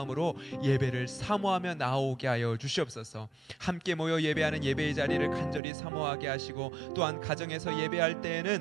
예배를 사모하며 나오게 하여 주시옵소서. 함께 모여 예배하는 예배의 자리를 간절히 사모하게 하시고 또한 가정에서 예배할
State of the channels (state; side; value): drops out; left; at 5.6 s